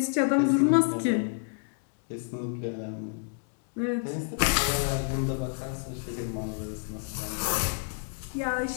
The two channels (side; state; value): right; silent; 58 dB below the other